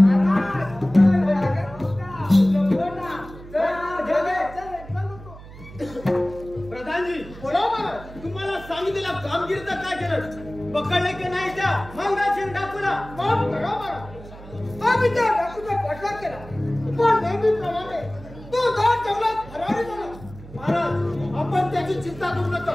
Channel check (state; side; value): noise; right; hum, 17 dB below the sound